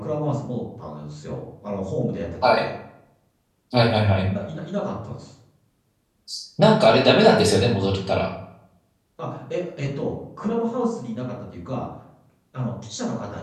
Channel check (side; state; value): both; identical; correlation 1.00